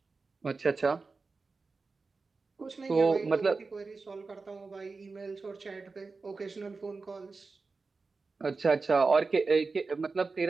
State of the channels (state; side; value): quieter; left; 4.1 dB